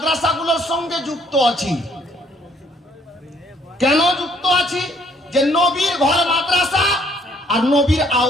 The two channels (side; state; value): both; normal; correlation 0.64